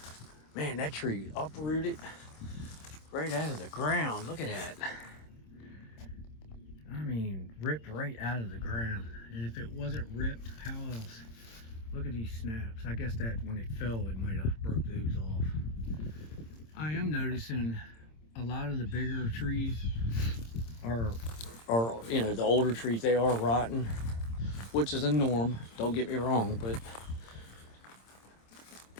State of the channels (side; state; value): right; late; 26 ms